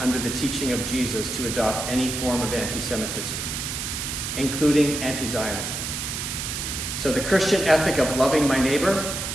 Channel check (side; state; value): right; noise; hiss, 4 dB below the sound